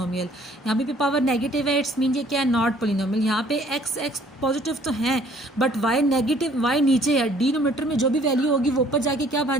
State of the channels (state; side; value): normal; both; correlation 0.58